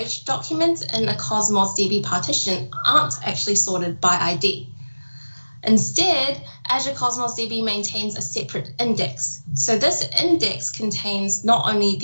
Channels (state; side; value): inverted; both; correlation -1.00